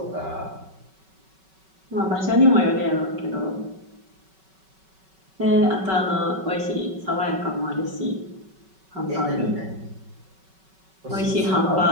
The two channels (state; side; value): late; left; 5.3 ms